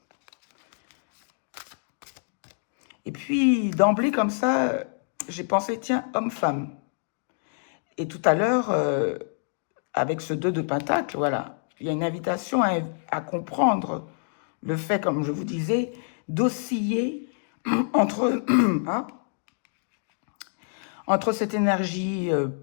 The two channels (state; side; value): silent; right; digital silence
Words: Et puis, d'emblée, comme ça, j'ai pensé, tiens, homme-femme. Et tout à l'heure, avec ce 2 de Pentacle, voilà, il y a une invitation à comprendre le fait, comme je vous disais, d'osciller entre, hein, entre cette énergie